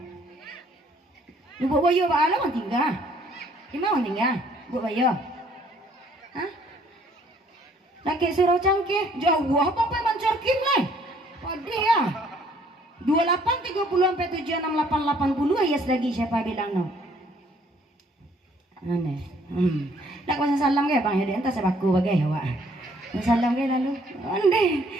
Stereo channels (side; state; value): both; normal; correlation 0.62